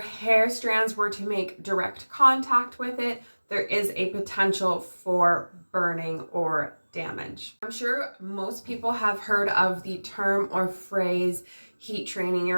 strands were to make direct contact with it, there is a potential for burning or damage. I'm sure most people have heard of the term or phrase heat training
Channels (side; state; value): both; inverted; correlation -1.00